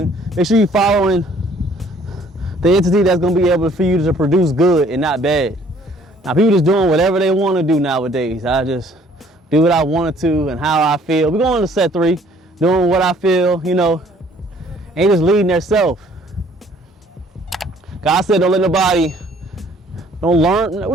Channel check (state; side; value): normal; both; correlation 0.59